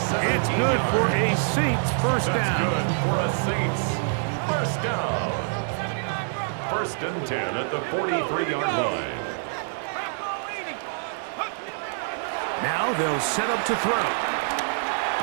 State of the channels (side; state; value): left; silent; digital silence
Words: It's good for a Saints first down. Good for a Saints first down. 1st and 10 at the 43-yard line. Now they'll set up to throw.